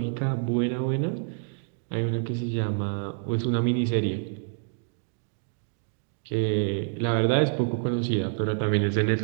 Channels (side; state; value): left; silent; 60 dB below the other